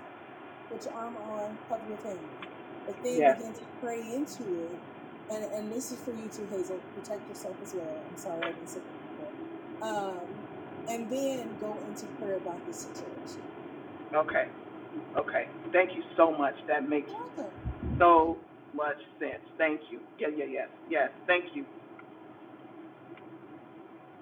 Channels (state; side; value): identical; both; correlation 1.00